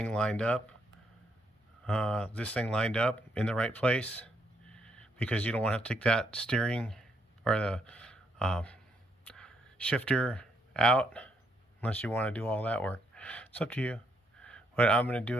lined up. In the right place, because you don't want to have to take that steering or the shifter out unless you want to do all that work. It's up to you, but I'm going to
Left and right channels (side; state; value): both; normal; correlation 0.75